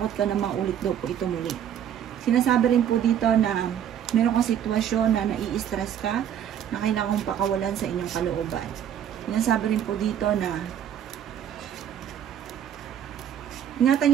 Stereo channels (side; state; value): left; quieter; 9.6 dB